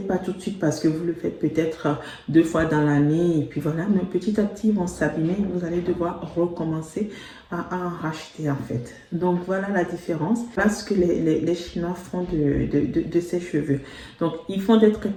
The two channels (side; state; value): both; identical; correlation 1.00